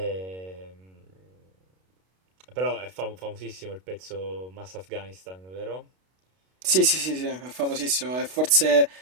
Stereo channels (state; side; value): late; left; 32 ms